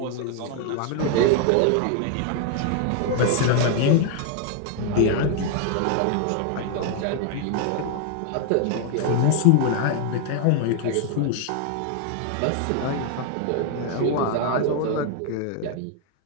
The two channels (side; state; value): both; different; correlation 0.01